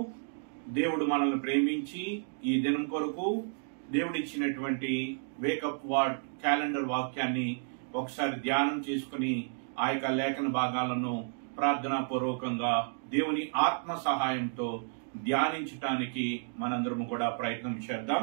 దేవుడు మనల్ని ప్రేమించి ఈ దినం కొరకు దేవుడిచ్చినటువంటి వేకప్ వార్డ్ క్యాలెండర్ వాక్యాన్ని ఒకసారి ధ్యానం చేసుకుని ఆ యొక్క లేఖన భాగాలను ప్రార్థనా పూర్వకంగా దేవుని ఆత్మ సహాయంతో ధ్యానించటానికి మనందరము కూడా ప్రయత్నం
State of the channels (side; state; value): left; silent; digital silence